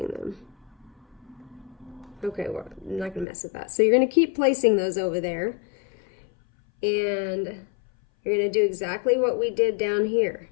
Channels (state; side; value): drops out; right; at 3.2 s